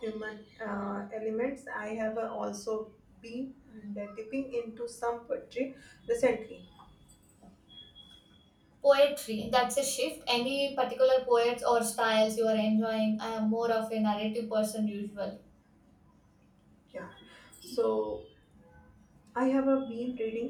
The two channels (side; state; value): both; identical; correlation 1.00